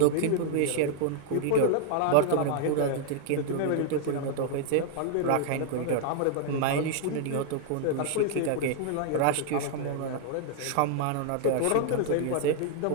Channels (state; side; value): different; both; correlation 0.00